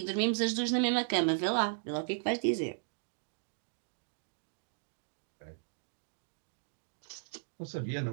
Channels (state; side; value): silent; left; digital silence